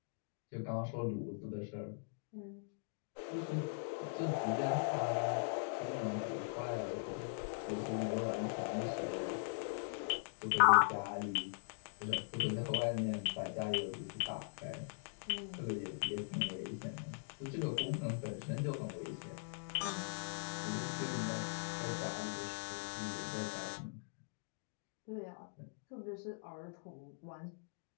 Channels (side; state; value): right; silent; digital silence